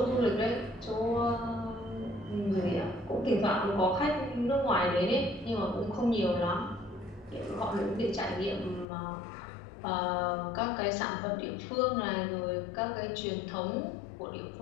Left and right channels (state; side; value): drops out; right; at 8.8 s